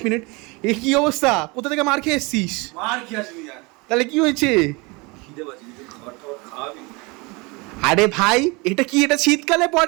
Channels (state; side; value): quieter; left; 26.9 dB